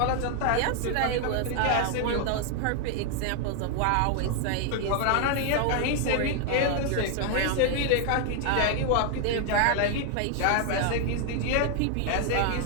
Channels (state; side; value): different; both; correlation 0.00